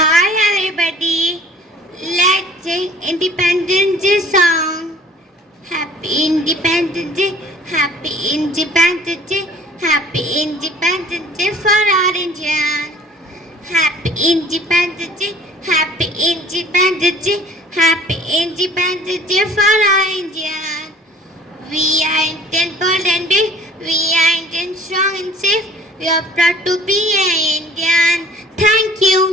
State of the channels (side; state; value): both; normal; correlation 0.51